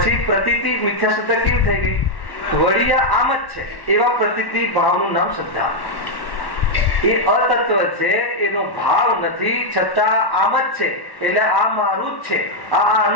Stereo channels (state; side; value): late; right; 1.1 ms